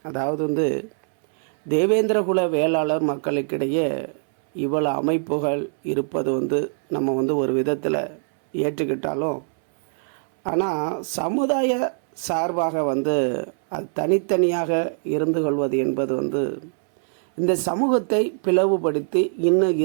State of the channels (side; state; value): left; silent; 64 dB below the other